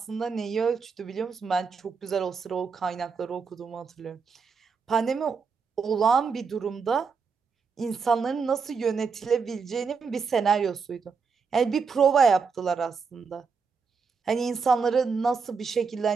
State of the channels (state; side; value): quieter; left; 5.4 dB